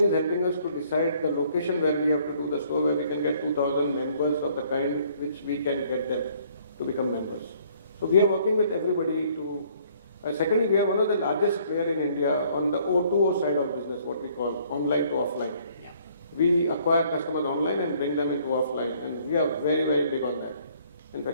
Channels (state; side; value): inverted; both; correlation -0.62